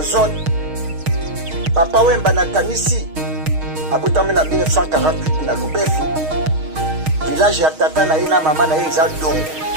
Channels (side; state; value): left; late; 6.4 ms